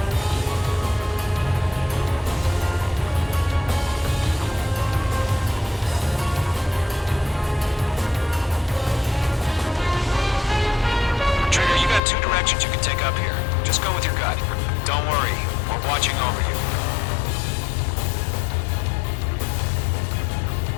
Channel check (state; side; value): drops out; right; at 12.0 s